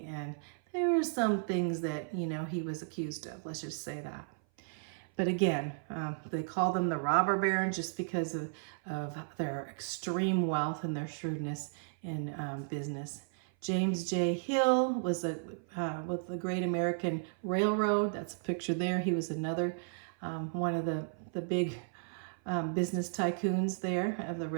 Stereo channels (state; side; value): silent; left; 55 dB below the other